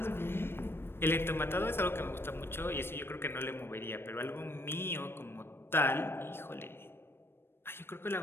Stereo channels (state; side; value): late; right; 0.11 ms